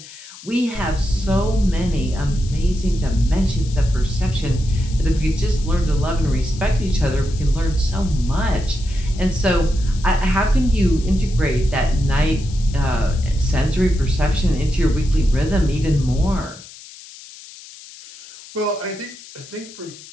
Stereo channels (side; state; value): left; noise; hiss, 18 dB below the sound